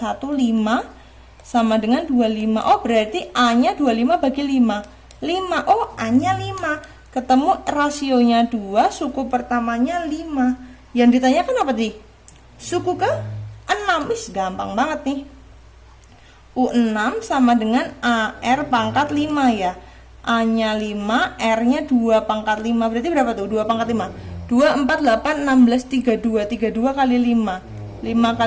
5 sama dengan 25. Oh, berarti A-nya 25 bagi 5. 5. Oh, A-nya 5. Ketemu rasionya 2, suku pertamanya 5. Yang ditanyakan apa tadi? Suku ke 6. Gampang banget nih. U6 sama dengan AR pangkat 5 ya. A-nya 5, R-nya 2 pangkat 5. Berarti berapa tuh? 2 pangkat 5. 2, 4, 8, 16, 32. 32 kali 5. 5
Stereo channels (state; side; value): identical; both; correlation 1.00